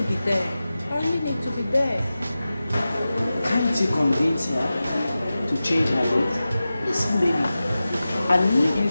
be there. I really need to be there. Can't you convince her to change her date? Listen, baby, I need you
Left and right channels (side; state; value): both; inverted; correlation -0.94